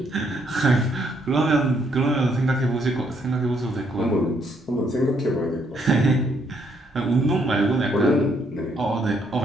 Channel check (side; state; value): both; normal; correlation 0.71